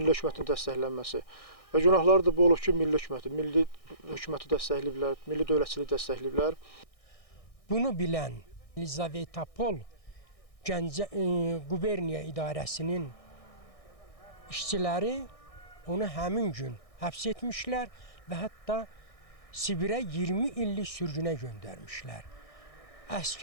hökumətin dəstəklənməsi. Və günahları da bu olub ki, milli hökuməti dəstəkləyiblər, milli dövlətçiliyi dəstəkləyiblər. Bunu bilən Lizavetapol Gəncə quberniya idarəsinin işçiləri onu həmin gün həbs etmişlər və hətta Sibirə 20 illik sürgünə göndərmişlər.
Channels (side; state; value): right; late; 1.6 ms